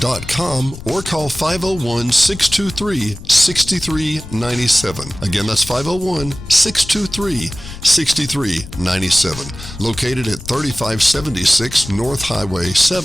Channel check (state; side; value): noise; left; rumble, 13 dB below the sound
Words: or call 501-623-6397. Again, that's 501-623-6397. Located at 3576 North Highway